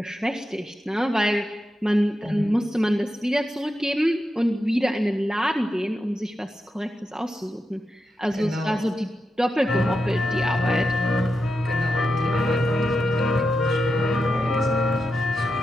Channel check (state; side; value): normal; both; correlation 0.88